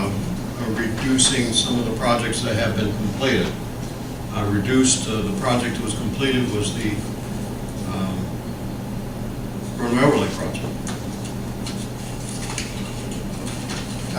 reducing some of the projects that have been completed. Reduced, the project that was completed was the Road Overlay project.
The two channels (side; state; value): both; identical; correlation 1.00